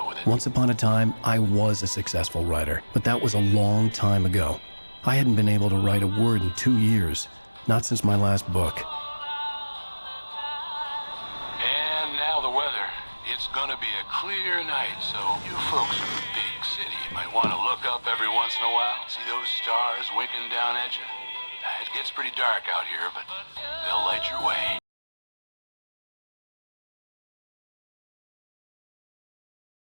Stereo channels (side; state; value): both; inverted; correlation -1.00